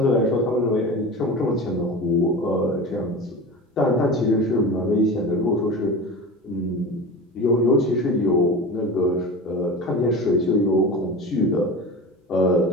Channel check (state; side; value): normal; both; correlation 0.30